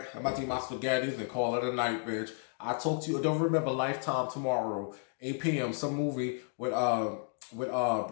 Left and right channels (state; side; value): silent; right; 56 dB below the other